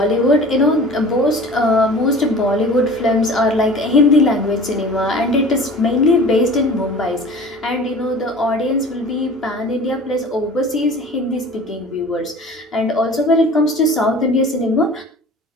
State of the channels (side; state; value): both; normal; correlation 0.42